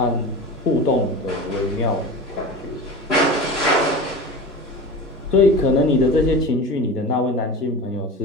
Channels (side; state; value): both; normal; correlation 0.31